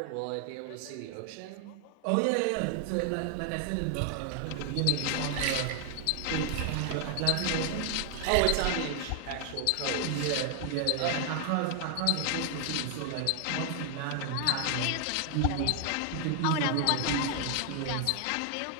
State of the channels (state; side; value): different; both; correlation 0.00